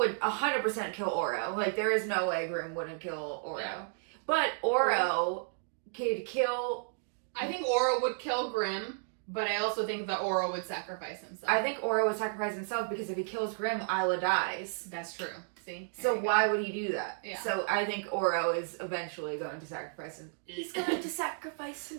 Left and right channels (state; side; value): silent; left; digital silence